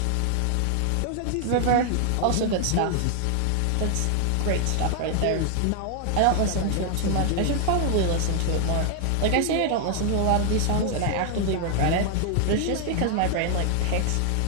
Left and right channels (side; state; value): both; different; correlation 0.00